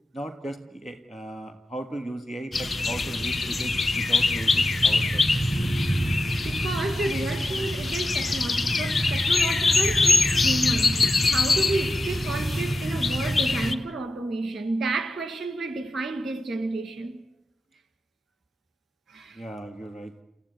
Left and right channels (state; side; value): normal; both; correlation 0.90